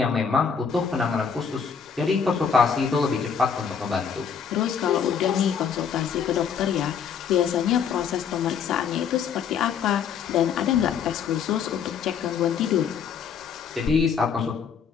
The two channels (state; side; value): quieter; right; 6.9 dB